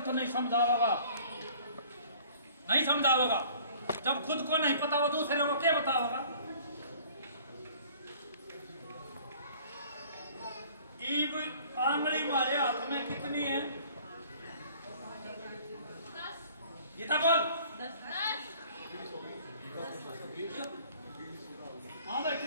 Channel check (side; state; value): both; inverted; correlation -0.52